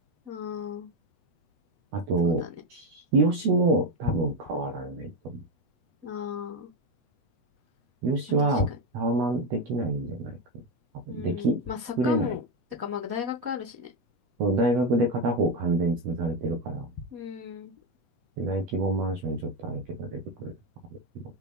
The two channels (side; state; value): left; late; 8.0 ms